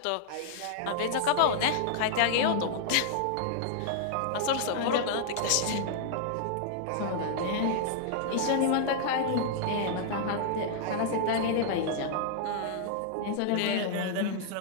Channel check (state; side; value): different; both; correlation -0.01